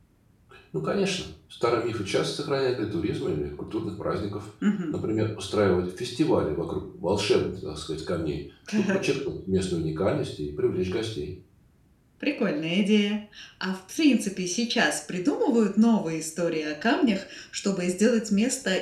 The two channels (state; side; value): identical; both; correlation 1.00